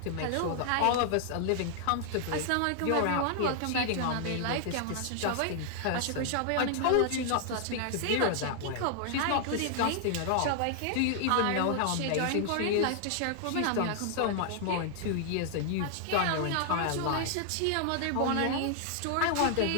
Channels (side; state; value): both; different; correlation 0.00